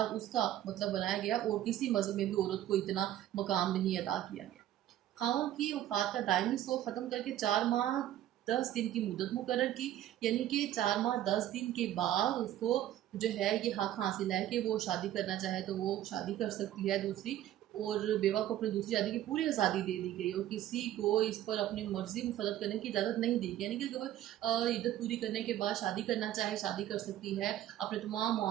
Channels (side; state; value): left; quieter; 12.7 dB